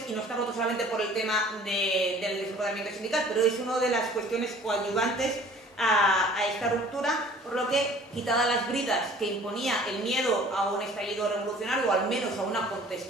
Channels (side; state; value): both; normal; correlation 0.50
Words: y no está roto solamente por el tema del desempoderamiento sindical, pero es una de las cuestiones coadyuvantes a esta ruptura, por lo que, quitadas las bridas que imponía el miedo a un estallido revolucionario o al menos a una